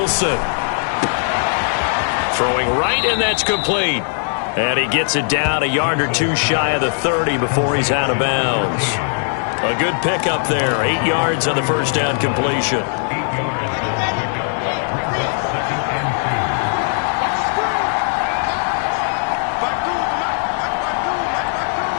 Throwing right, and that's complete. And he gets it down a yard or 2 shy of the 30 before he's out of bounds. A good pickup there, 8 yards on the first down completion.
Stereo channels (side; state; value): right; silent; 67 dB below the other